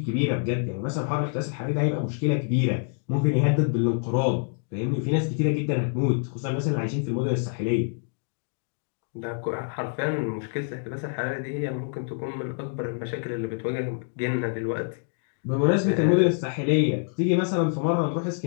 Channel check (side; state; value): right; silent; 61 dB below the other